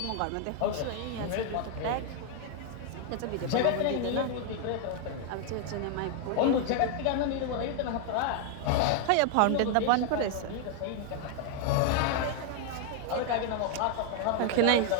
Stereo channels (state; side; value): different; both; correlation 0.00